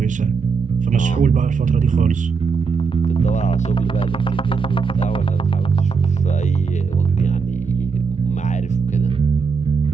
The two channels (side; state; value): left; quieter; 5.3 dB